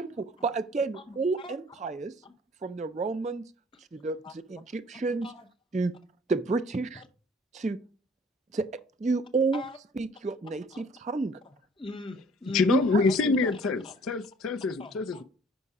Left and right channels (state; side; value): normal; both; correlation 0.54